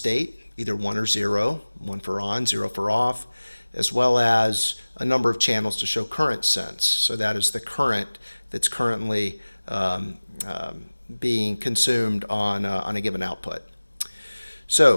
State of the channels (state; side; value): inverted; both; correlation -1.00